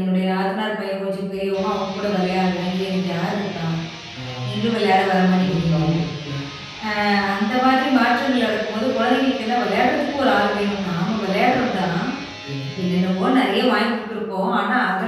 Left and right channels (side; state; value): both; identical; correlation 1.00